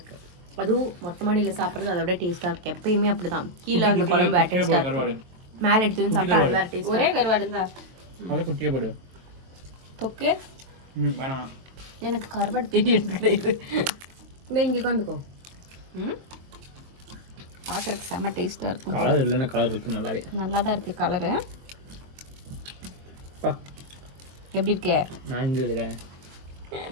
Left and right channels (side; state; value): left; late; 23 ms